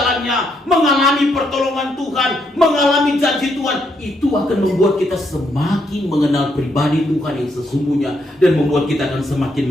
mengalami pertolongan Tuhan, mengalami janji Tuhan, itu akan membuat kita semakin mengenal pribadi Tuhan yang sesungguhnya dan membuat kita akan semakin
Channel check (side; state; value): both; normal; correlation 0.76